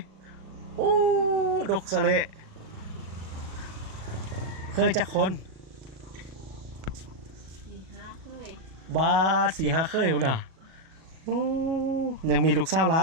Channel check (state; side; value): late; left; 37 ms